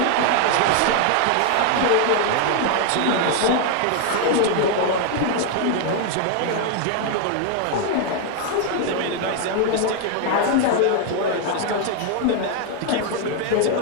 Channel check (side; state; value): both; different; correlation 0.00